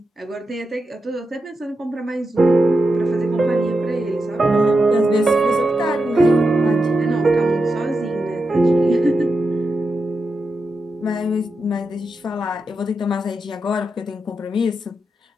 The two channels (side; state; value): both; normal; correlation 0.88